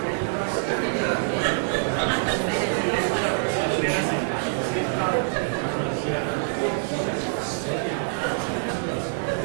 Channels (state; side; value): silent; left; 61 dB below the other